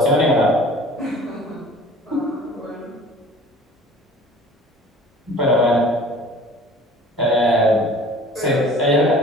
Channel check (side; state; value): both; normal; correlation 0.47